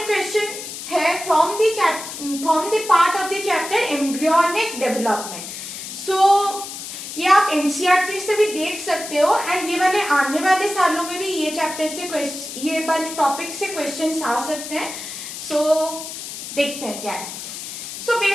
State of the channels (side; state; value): left; noise; hiss, 9 dB below the sound